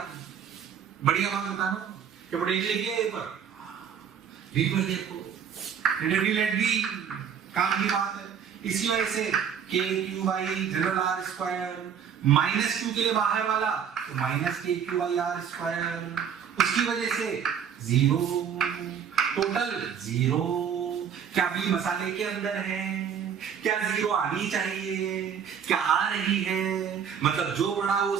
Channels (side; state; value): left; quieter; 7.9 dB